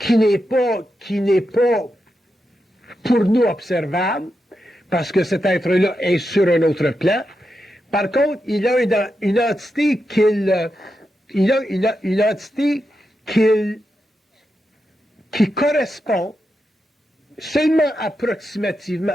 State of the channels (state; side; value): normal; both; correlation 0.87